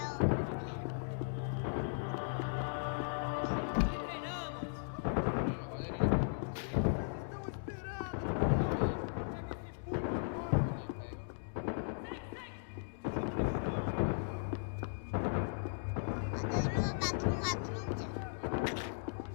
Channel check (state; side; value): silent; right; digital silence